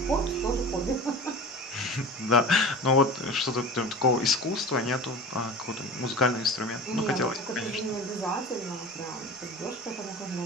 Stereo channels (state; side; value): normal; both; correlation 0.35